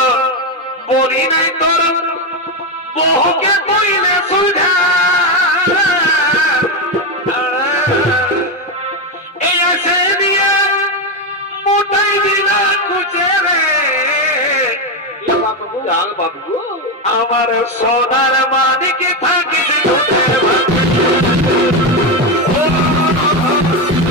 বলি নাই তোর বহুকে কইলে সুধা এই আসে দিয়ে মোটাই দিলা কুচে রে আমার সোনার মানে কি থাকিস দুধে ভাতে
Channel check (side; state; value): both; normal; correlation 0.10